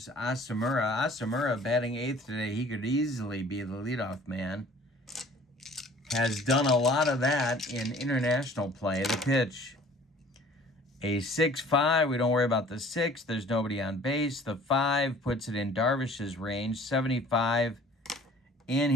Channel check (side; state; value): both; normal; correlation 0.51